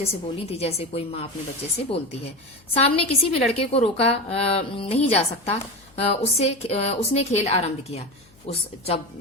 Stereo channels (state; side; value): noise; left; hum, 29 dB below the sound